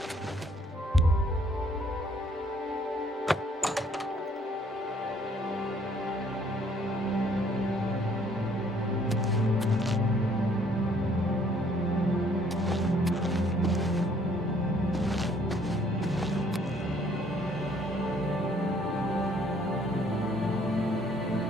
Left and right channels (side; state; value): both; normal; correlation 0.62